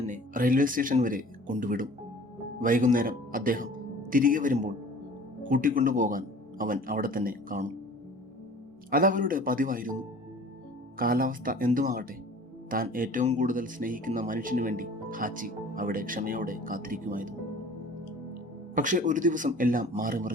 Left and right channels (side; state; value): both; normal; correlation 0.47